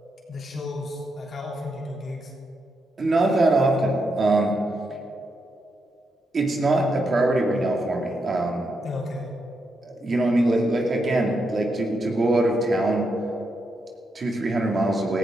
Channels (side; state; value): both; normal; correlation 0.82